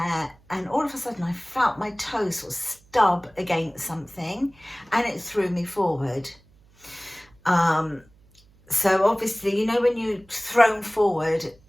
and all of a sudden I felt my toe sort of stub against something, and it threw me forward. So obviously, you know, when you're thrown forward,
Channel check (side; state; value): right; noise; hum, 30 dB below the sound